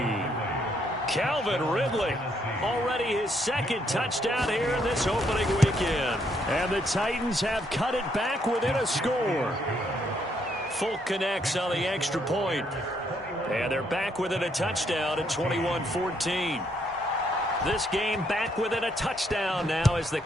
Calvin Ridley, already his second touchdown here in this opening weekend. And the Titans have cut it back within a score. Folk connects on the extra point. And they're back within a touchdown at 21-14. This game back within a touchdown now as the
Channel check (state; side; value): normal; both; correlation 0.72